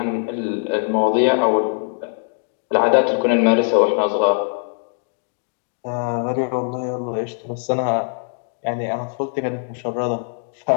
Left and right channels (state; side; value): silent; right; digital silence